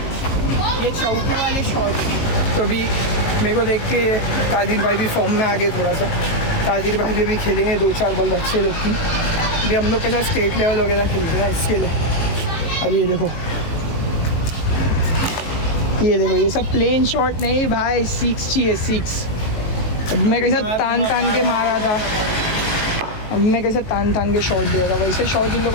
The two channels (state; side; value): late; right; 19 ms